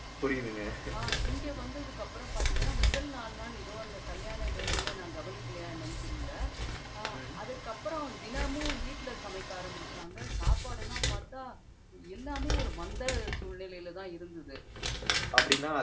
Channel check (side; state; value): both; identical; correlation 1.00